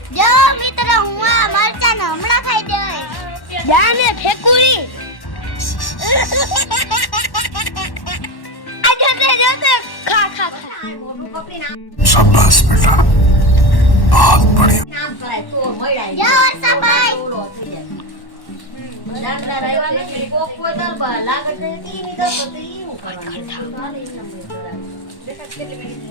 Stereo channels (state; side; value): late; right; 1.1 ms